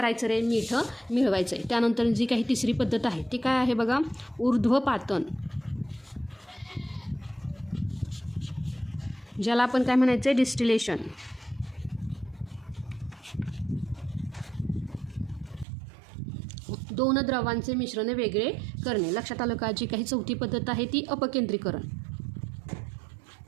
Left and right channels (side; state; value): left; drops out; at 15.7 s